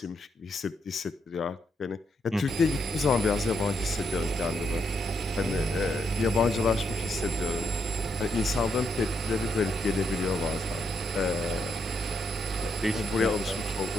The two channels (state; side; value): normal; both; correlation 0.79